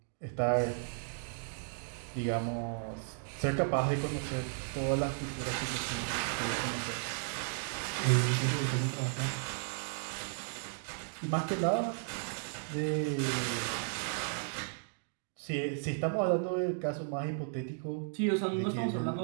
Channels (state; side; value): silent; left; digital silence